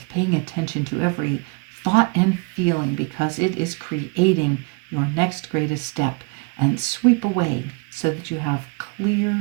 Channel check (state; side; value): quieter; left; 31.9 dB